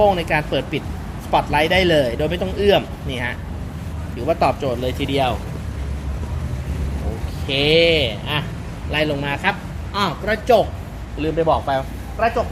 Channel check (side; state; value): both; identical; correlation 1.00